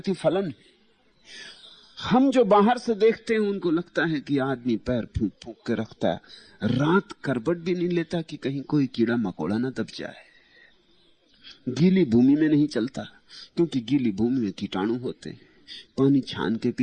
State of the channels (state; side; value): identical; both; correlation 1.00